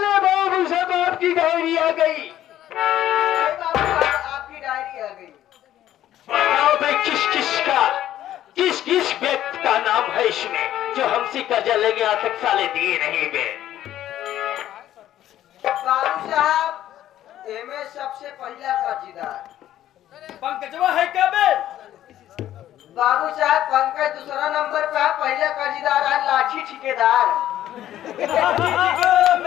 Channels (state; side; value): quieter; right; 12.4 dB